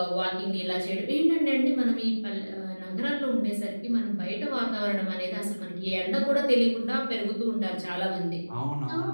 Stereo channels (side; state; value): both; inverted; correlation -1.00